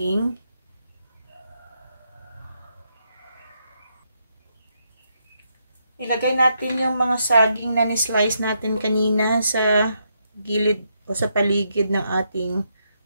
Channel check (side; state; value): both; inverted; correlation -0.79